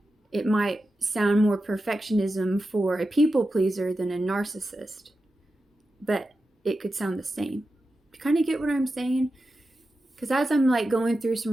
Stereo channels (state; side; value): normal; both; correlation 0.91